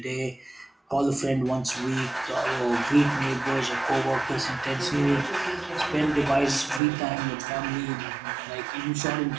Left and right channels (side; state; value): left; drops out; at 6.8 s